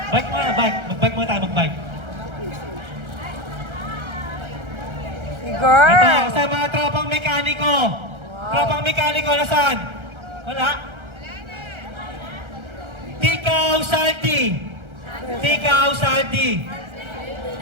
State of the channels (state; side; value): late; left; 1.3 ms